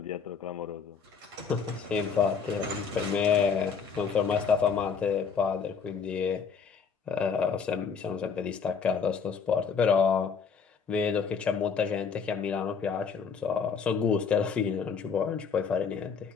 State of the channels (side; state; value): right; quieter; 5.9 dB